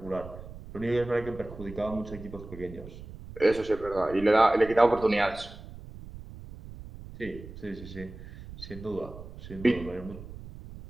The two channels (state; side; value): noise; right; rumble, 14 dB below the sound